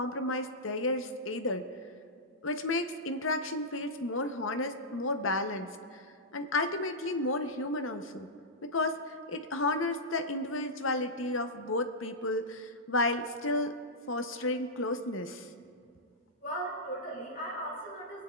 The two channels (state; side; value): normal; both; correlation -0.11